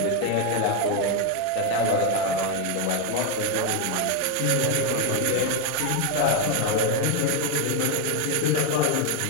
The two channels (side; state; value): both; different; correlation 0.01